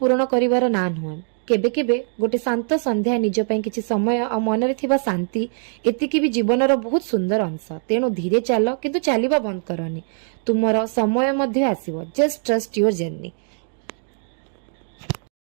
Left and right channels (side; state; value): left; silent; 57 dB below the other